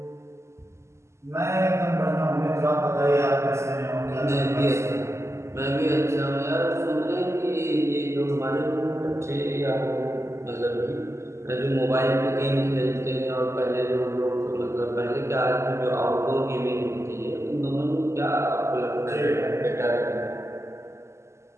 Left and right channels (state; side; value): late; left; 0.13 ms